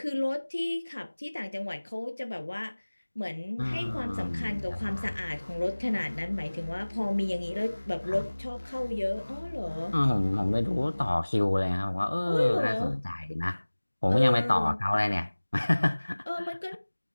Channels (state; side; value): inverted; both; correlation -1.00